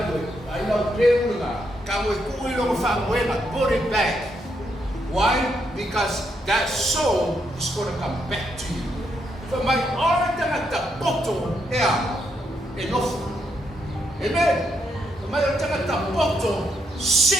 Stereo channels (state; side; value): normal; both; correlation 0.78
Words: ay na preo na kamo ko ilo fa buena put it back. Why? Because that soul is going to come back to you. For my heart at the bottom, enough. Amen. For my heart at the bottom,